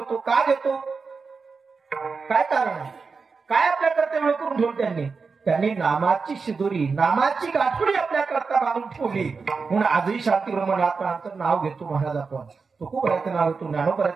का घेतो, काय कारण आहे, काय आपल्या करता वेळ करून ठेवलं त्यांनी नामाची शिदुरी, नामाची गाठोडी आपल्या करता बांधून ठेवली. म्हणून आजही शांतिगृह नाथ महाराजांचं नाव घेतो महाराज आपण. तुकोबराचं नाव घेतो,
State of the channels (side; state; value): left; quieter; 4.8 dB